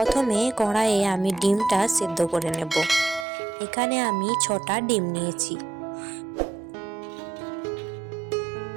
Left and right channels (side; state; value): left; drops out; at 3.2 s